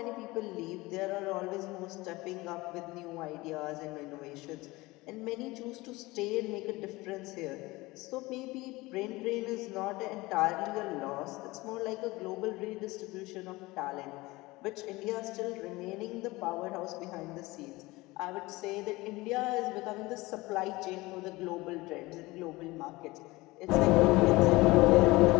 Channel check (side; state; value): right; quieter; 21.1 dB